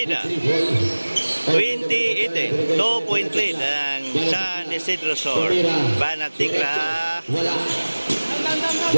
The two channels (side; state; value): both; inverted; correlation -1.00